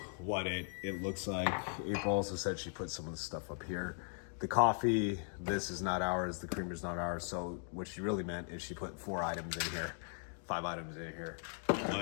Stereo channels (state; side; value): silent; right; 52 dB below the other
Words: what it looks like. April also said she put some of the stuff up here. The coffee, this is not ours. The creamer's not ours. So what she really meant is she put 5 items in here.